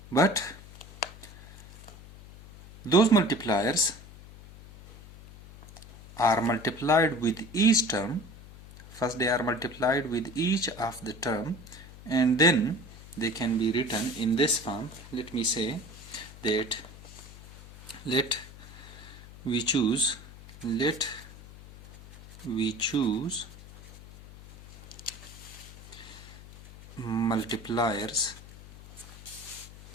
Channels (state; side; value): noise; left; hum, 18 dB below the sound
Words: But those multipliers are multiplied with each term. First they are multiplied with each of the term, and then they can be written in this form. Let me say that let we choose multipliers.